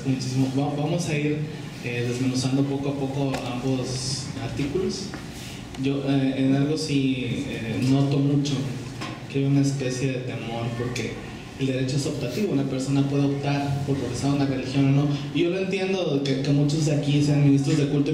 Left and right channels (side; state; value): both; identical; correlation 1.00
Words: muchísimo. Vamos a ir desmenuzando poco a poco ambos artículos. Yo en algo sí noto mucho que hay una especie de temor, porque el derecho es optativo, una persona puede optar por profesar una religión o no. Y yo lo entiendo, que muchos de aquí sean ministros de culto,